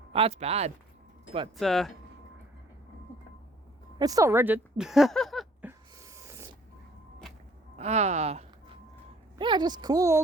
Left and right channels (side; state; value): both; normal; correlation 0.57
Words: That's bad. But, it's still rigid. Yeah, just cool